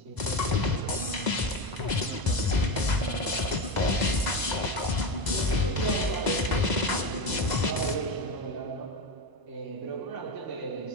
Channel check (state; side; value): late; left; 1.0 ms